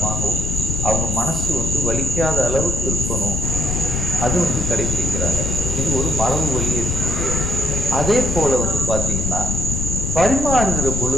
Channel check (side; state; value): left; noise; rumble, 1 dB below the sound